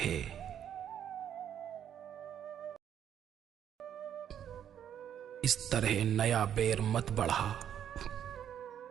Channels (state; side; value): quieter; left; 9.5 dB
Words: इस तरह नया बैर मत बढ़ा,